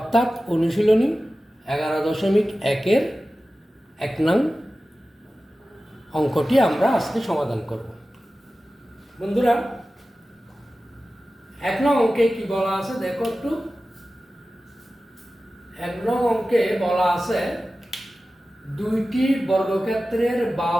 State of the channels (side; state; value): both; normal; correlation 0.95